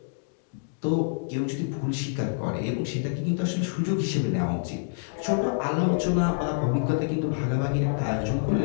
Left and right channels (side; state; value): right; silent; digital silence